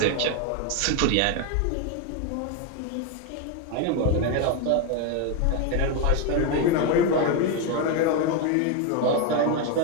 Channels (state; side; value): different; both; correlation 0.02